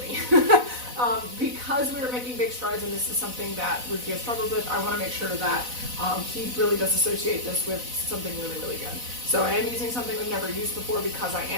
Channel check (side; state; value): left; late; 4.0 ms